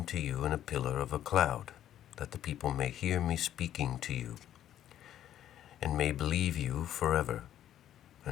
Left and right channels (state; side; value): quieter; right; 11.4 dB